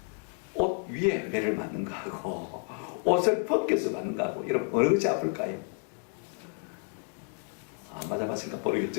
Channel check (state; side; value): quieter; right; 35.7 dB